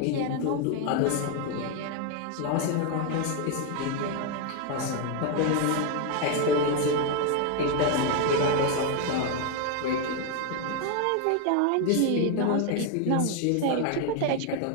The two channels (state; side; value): different; both; correlation 0.01